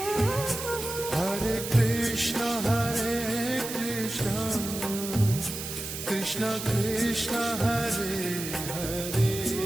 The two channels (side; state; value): right; noise; hiss, 7 dB below the sound